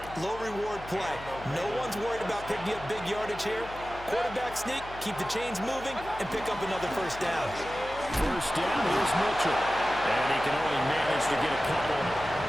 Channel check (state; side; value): noise; left; hum, 16 dB below the sound